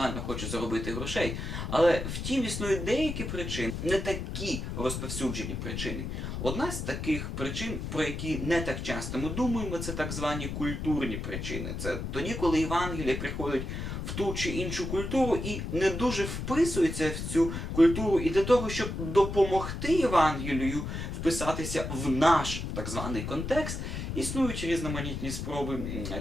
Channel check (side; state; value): left; noise; rumble, 5 dB below the sound